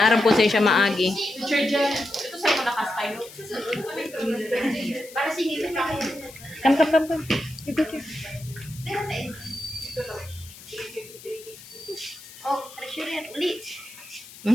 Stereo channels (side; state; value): left; noise; hiss, 18 dB below the sound